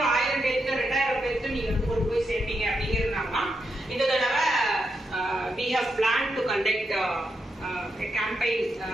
1000 பேருக்கு 2000 பேருக்கு நீங்க வந்து கொண்டு போய் சேர்ப்பீங்க அப்படிங்கிறதுனால இந்த தடவை we have planned to conduct a campaign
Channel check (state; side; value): normal; both; correlation 0.84